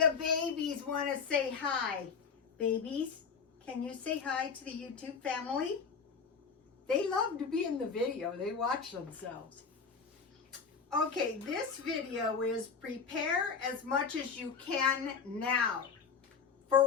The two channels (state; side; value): quieter; right; 5.7 dB